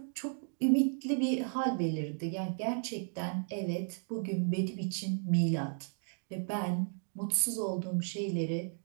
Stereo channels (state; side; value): silent; left; 55 dB below the other